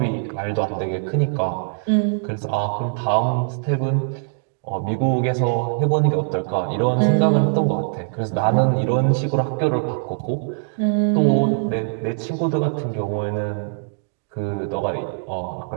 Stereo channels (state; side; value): silent; left; digital silence